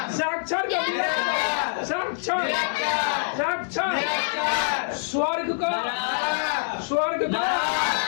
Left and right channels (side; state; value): right; silent; 62 dB below the other